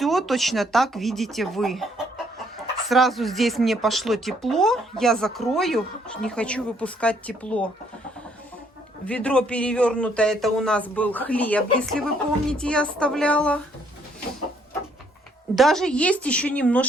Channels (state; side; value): normal; both; correlation 0.67